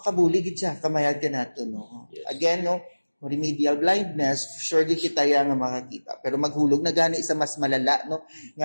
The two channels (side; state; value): both; inverted; correlation -1.00